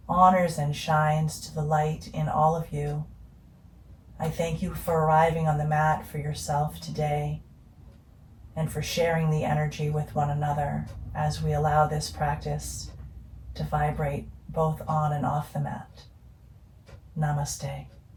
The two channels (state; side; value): identical; both; correlation 1.00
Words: honors and shines to the light in all of you. I thank you for arriving on the mat for yourself today and for sharing the energy with one another as we allow this practice to vibrate both on and off the mat. Namaste.